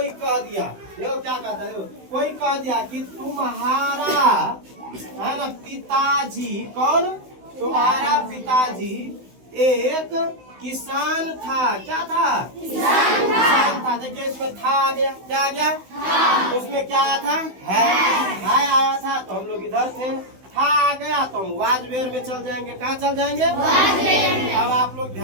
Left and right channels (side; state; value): left; late; 16 ms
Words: कह दिया, देखो क्या कहता है, कोई कह दिया कि तुम्हारा है ना पिताजी। कौन? तुम्हारा पिताजी एक किसान था। क्या था? किसान था। देखिए इसमें था आ गया। क्या आ गया? उसमें क्या आया था? है आया था तो हम लोग इधर थे। था आ गया तो हम वाजवेयर में चल जाएंगे। कहाँ चल जाएंगे? अब आप लोग